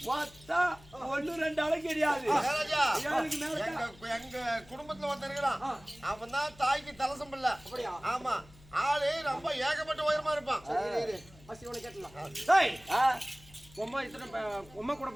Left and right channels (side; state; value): left; noise; hum, 23 dB below the sound